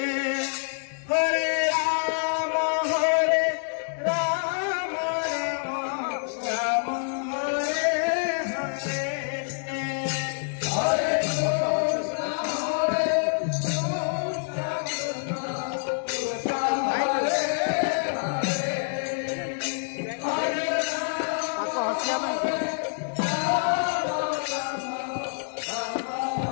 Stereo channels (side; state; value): right; silent; digital silence